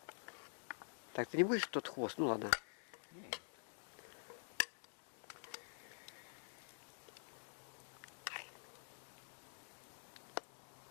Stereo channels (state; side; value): silent; right; digital silence